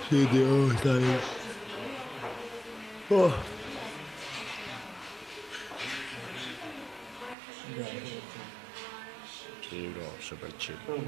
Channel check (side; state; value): left; drops out; at 7.4 s